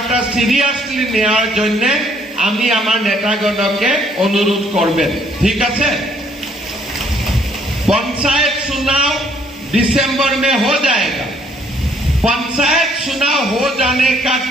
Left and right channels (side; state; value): both; normal; correlation 0.65